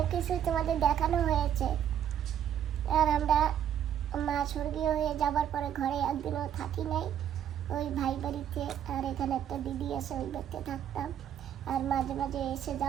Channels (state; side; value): quieter; left; 9.8 dB